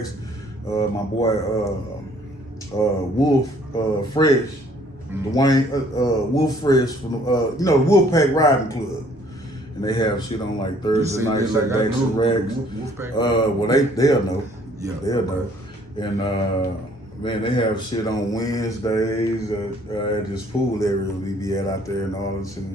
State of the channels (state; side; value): normal; both; correlation 0.60